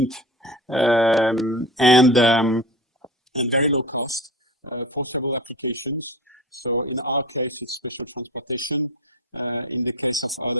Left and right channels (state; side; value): normal; both; correlation 0.32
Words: and very low cost for several applications. So in our case, it's special transportation. In the case of